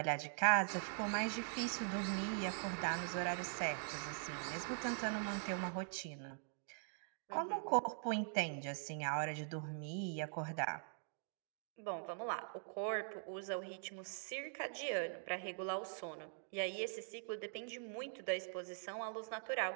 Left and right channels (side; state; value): left; silent; digital silence